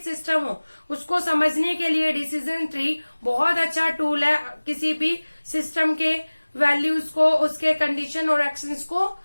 सिस्टम हो, उसको समझने के लिए डिसीजन ट्री बहुत अच्छा टूल है किसी भी सिस्टम के वैल्यूज को, उसके कंडीशन और एक्शंस को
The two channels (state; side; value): inverted; both; correlation -1.00